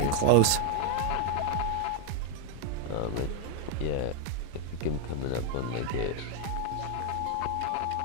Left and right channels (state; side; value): different; both; correlation 0.00